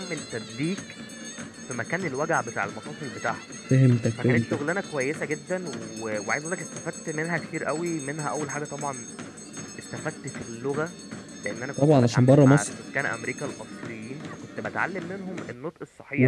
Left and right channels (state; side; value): identical; both; correlation 1.00